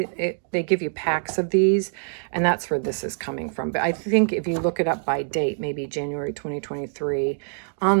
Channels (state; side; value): silent; left; digital silence